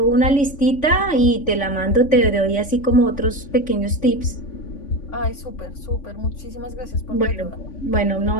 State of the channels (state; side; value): late; right; 3.5 ms